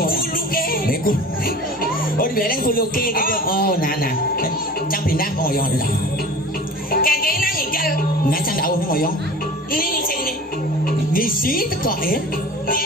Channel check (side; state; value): both; normal; correlation 0.40